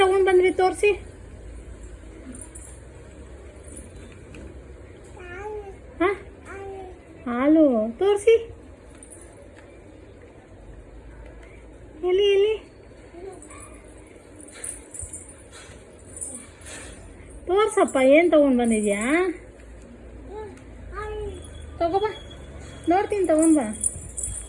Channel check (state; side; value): identical; both; correlation 1.00